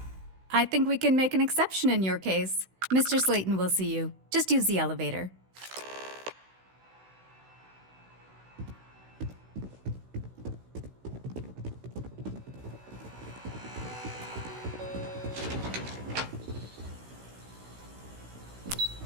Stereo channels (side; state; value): left; late; 16 ms